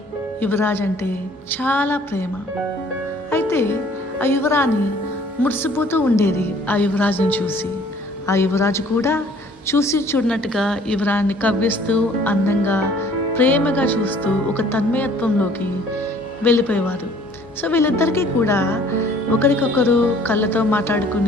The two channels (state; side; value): normal; both; correlation 0.55